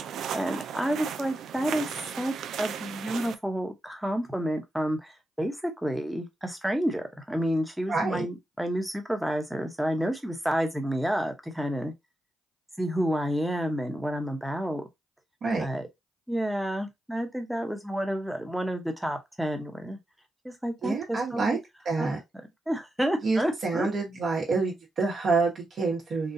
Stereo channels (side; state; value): both; normal; correlation 0.88